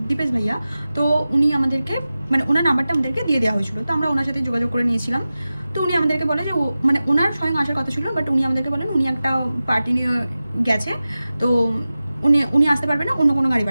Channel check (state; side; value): inverted; both; correlation -0.95